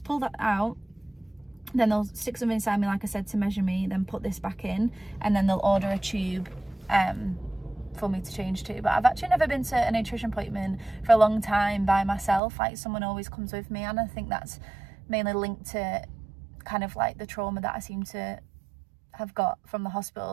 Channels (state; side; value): drops out; left; at 12.4 s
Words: pull that out, then they'll stick something inside me, like I said, to measure me, then put this back in, and then they'll order a tube for me to change to. But I've actually never been to a nutrition appointment for a long time by myself. Someone always comes with me, and I think that's mainly linked to kind of the trauma that I seem to have got from the